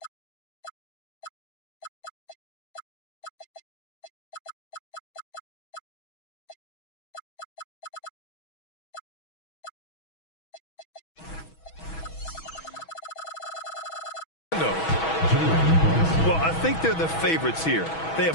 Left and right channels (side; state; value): right; late; 6.2 ms